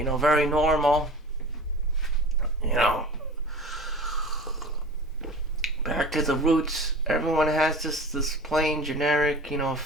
normal. You know, back to the roots. Everyone has this plain generic,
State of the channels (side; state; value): both; normal; correlation 0.38